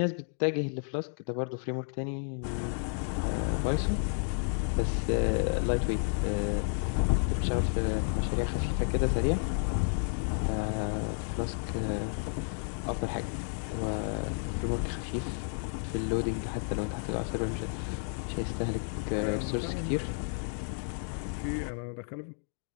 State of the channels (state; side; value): silent; right; 57 dB below the other